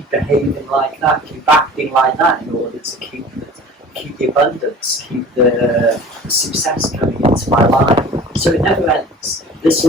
behaving like that, keep acting like that, in order to keep the abundance, keep the success coming into my life. So it never ends. This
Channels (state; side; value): normal; both; correlation 0.42